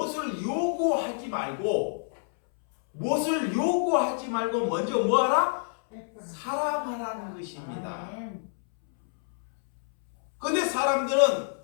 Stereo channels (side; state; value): right; silent; 60 dB below the other